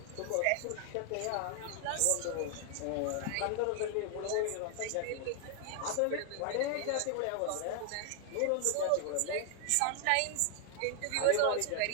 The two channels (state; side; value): different; both; correlation 0.00